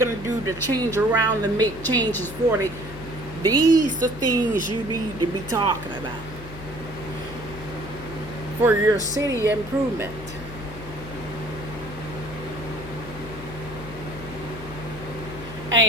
to do to change around and make changes for them. These are things you need to be talking about for your city improvement.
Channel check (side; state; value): left; noise; hum, 13 dB below the sound